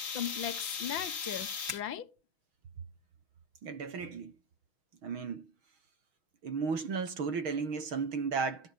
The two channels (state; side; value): late; left; 5.9 ms